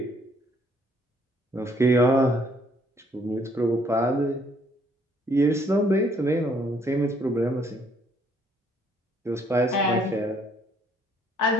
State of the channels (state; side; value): normal; both; correlation 0.65